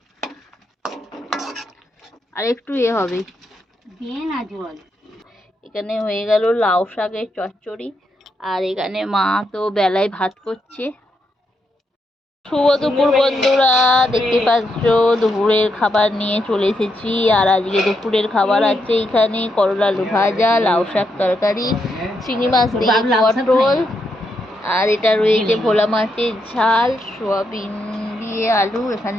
আর একটু হবে, দিয়ে না জল। এখানে হয়ে গেল লাউ শাকের চচ্চড়ি। আর এখানে মা তো বেলায় ভাত করছে। শুভ দুপুর বন্ধুরা, দেখতে পাচ্ছ দুপুরের খাবার নিয়ে চলে এসেছি। আর আজকে দুপুরের খাবার আছে এখানে করলা আলু ভাজা, লাউ শাক তরকারি, চিংড়ি মাছ দিয়ে পটল, আর এটা রয়েছে ভোলা মাছের ঝাল, সোয়াবিন দিয়ে আলু,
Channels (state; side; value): normal; both; correlation 0.81